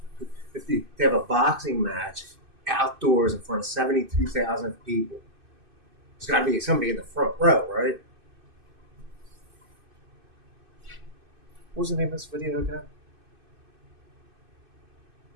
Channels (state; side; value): late; left; 2.6 ms